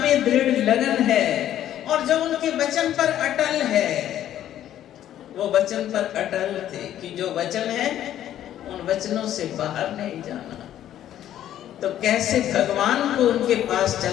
में दृढ़ लगन है और जो उनके वचन पर अटल है, वो वचन पर अटल थे कि जो वचन है उन वचनों से बाहर नहीं जाना। तो कैसे भगवान को उनके पास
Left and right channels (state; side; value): quieter; right; 11.6 dB